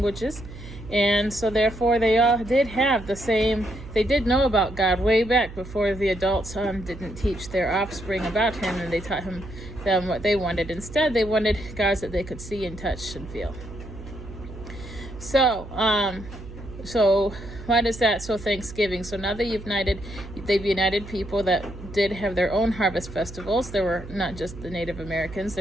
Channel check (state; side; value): noise; right; hum, 14 dB below the sound